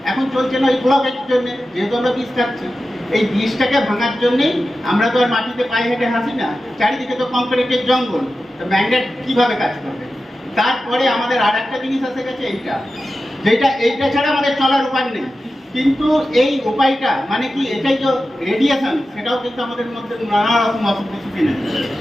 এখন চলছে না এই ব্লকের জন্য। যেহেতু আমরা বিষ খাচ্ছি, এই বিষটাকে ভাঙার জন্যেই আমরা তো আর মাটিতে পায়ে হেঁটে হাসি না, চারিদিকে তো কংক্রিটের জঙ্গল, তো ম্যাগনেট কিভাবে কাজ করবে। তারপরে আমাদের আর একটা জিনিস এসে গেছে, এইটা ছাড়া আমাদের চলার উপায় নেই। কিন্তু এই উপায়টা মানে কি, এটাই যে রেডিয়েশন, সেটাও কিন্তু আমাদের মধ্যে নানা রকম অসুখ বিসুখ এনে দেয়।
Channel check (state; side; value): normal; both; correlation 0.93